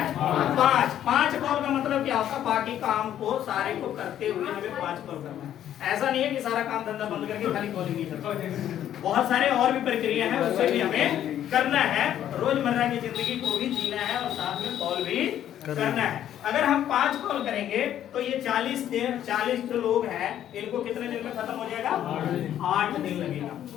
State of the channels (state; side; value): quieter; right; 11.0 dB